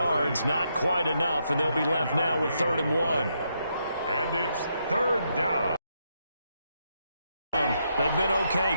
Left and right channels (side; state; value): both; inverted; correlation -0.79